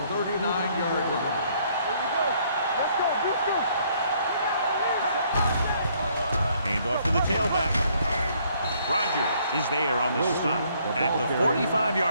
39-yard line. Here we go. Let's go. Let's go. Hand off to the tailback. Rogers is there on the stop at the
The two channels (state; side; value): inverted; both; correlation -0.66